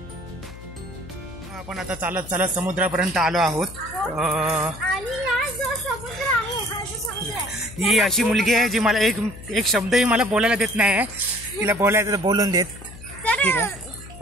आपण आता चालत चालत समुद्रापर्यंत आलो आहोत. आणि हा जो समुद्र आहे, हा जो समुद्र आहे, ही अशी मुलगी आहे जी मला एक शब्दही मला बोलायला देत नाही. तिला बोलायचं तर बोलून देत.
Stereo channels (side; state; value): left; noise; hum, 16 dB below the sound